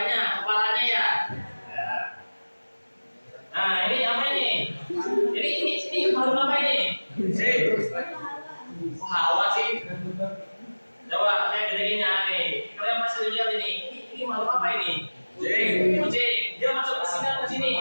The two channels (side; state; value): both; inverted; correlation -1.00